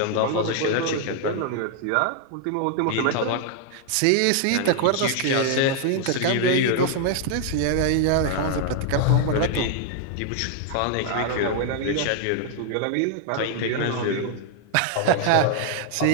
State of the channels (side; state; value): both; different; correlation 0.00